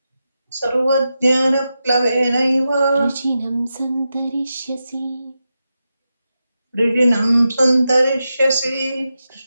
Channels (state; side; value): inverted; both; correlation -0.89